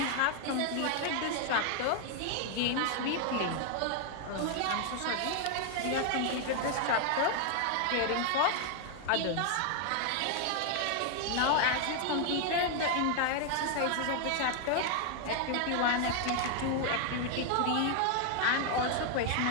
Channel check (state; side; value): different; both; correlation 0.00